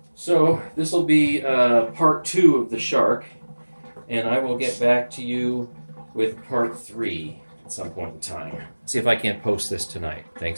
So this will be part 2 of the Shark, and I will get back to you with part 3 at some point in time. See if I can't post this tonight.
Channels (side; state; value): both; inverted; correlation -1.00